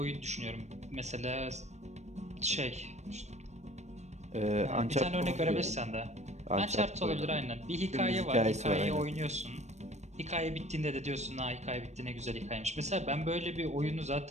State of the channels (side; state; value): left; late; 0.33 ms